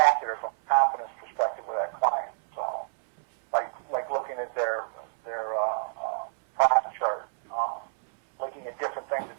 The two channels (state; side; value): silent; left; 59 dB below the other